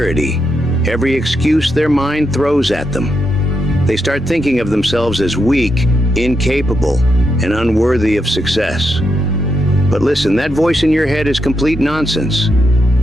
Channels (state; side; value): normal; both; correlation 0.83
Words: every excuse their mind throws at them. They start thinking of themselves as weak, incapable, and unworthy of success. But listen, that voice in your head is complete nonsense.